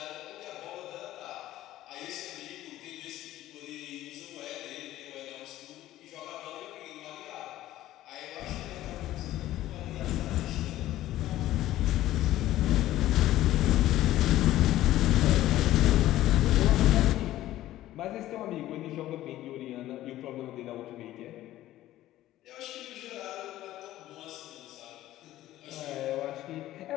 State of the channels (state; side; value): quieter; right; 14.5 dB